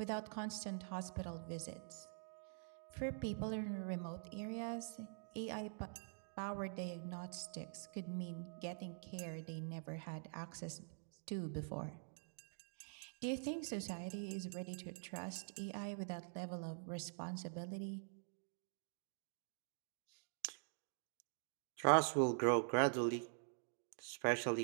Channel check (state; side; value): silent; left; digital silence